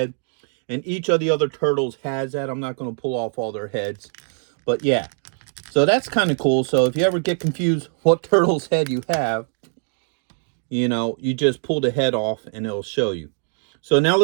And each of the other turtles has that. I'm not going to pull off all their heads. But yeah, so that's kind of cool. So if you ever get confused what turtle's head you have, you know, you just pull the head off and it'll show you. So now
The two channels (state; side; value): silent; left; 64 dB below the other